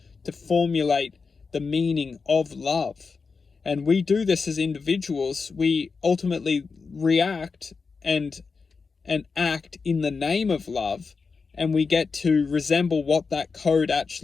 to formulate the meaning of love. And we do this as individuals. We ultimately react and act in the name of love, and we get to resemble what that code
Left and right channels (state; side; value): quieter; right; 4.8 dB